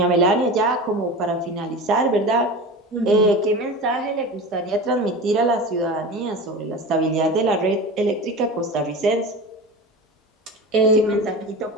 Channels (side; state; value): both; normal; correlation 0.30